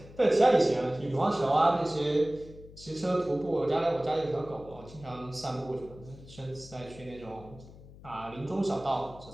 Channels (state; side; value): noise; left; hum, 19 dB below the sound